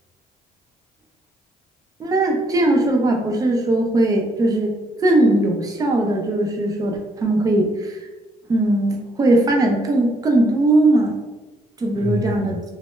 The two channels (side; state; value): both; normal; correlation 0.72